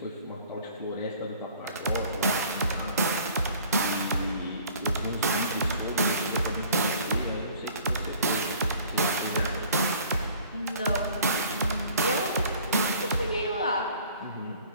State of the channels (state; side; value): inverted; both; correlation -0.52